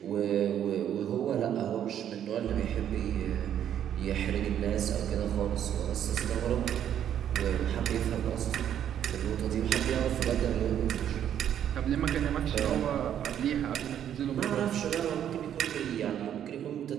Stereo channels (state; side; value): quieter; left; 10.0 dB